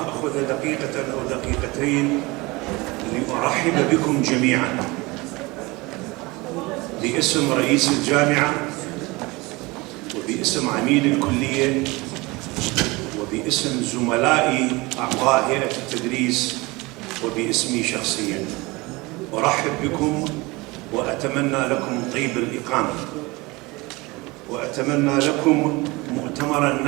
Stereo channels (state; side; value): quieter; left; 23.4 dB